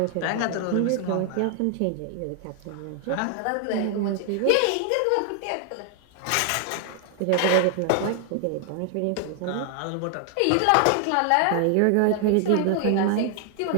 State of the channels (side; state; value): both; different; correlation 0.00